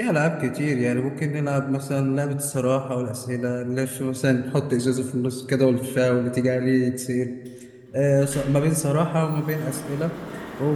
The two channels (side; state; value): both; identical; correlation 1.00